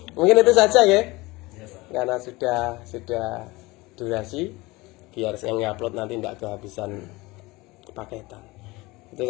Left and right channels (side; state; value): right; quieter; 22.0 dB